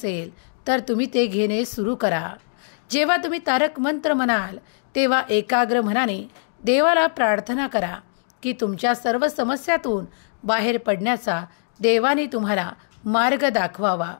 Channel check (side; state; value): right; silent; digital silence